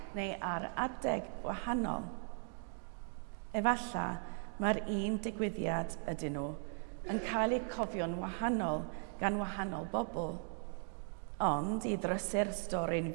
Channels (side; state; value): left; silent; 52 dB below the other